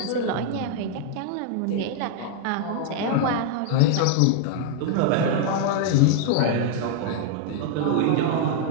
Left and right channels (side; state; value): both; different; correlation 0.00